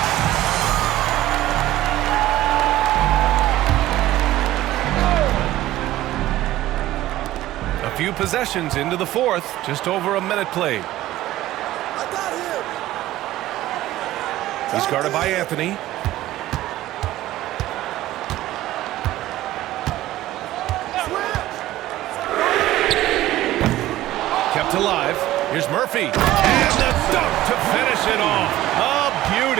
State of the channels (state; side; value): quieter; left; 15.3 dB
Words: Few possessions into the fourth, just over a minute played. He's guarded by Anthony. Kept alive. Here's Murphy. And the dunk to finish it off. A